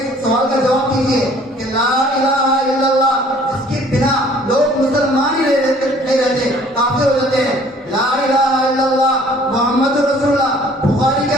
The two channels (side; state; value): both; normal; correlation 0.55